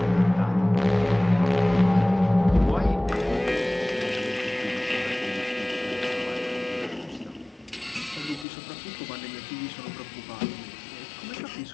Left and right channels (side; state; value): right; drops out; at 8.5 s